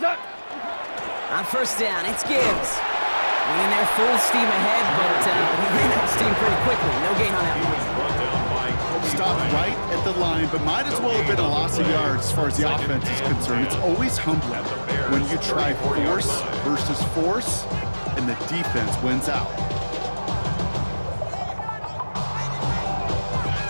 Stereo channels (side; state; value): both; inverted; correlation -1.00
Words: On first down, it's Gibbs. Winning there full steam ahead, but he ran out of steam pretty quickly. No gain on that one. Stopped right at the line, but might as well have been a loss of yards as far as the offense is concerned. It's always humbling when you try force versus force, and the defense wins out.